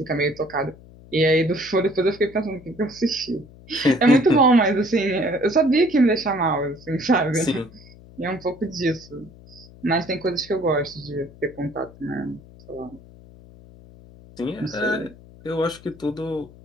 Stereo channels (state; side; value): noise; left; hum, 22 dB below the sound